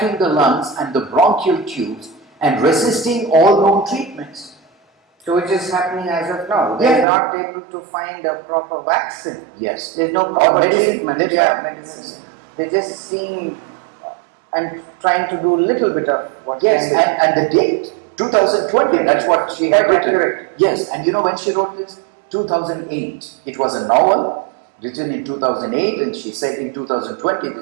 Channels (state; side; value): drops out; left; at 7.1 s